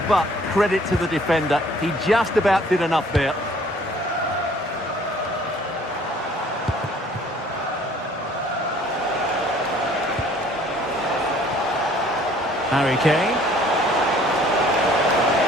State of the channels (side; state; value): both; normal; correlation 0.56